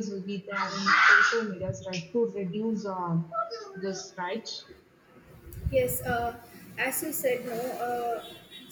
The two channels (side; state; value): both; identical; correlation 1.00